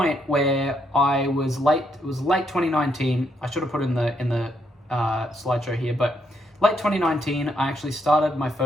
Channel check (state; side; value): normal; both; correlation 0.76